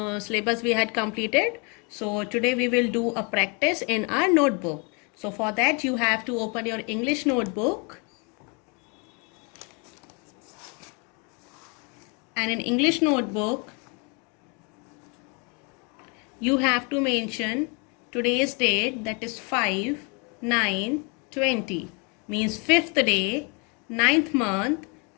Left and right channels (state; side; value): quieter; right; 33.2 dB